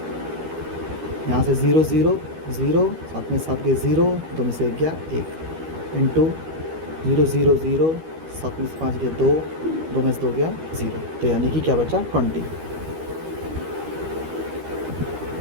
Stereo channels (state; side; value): late; left; 13 ms